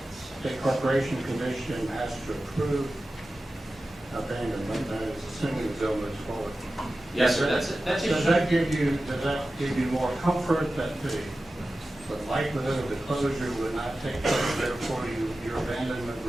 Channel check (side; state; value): both; normal; correlation 0.94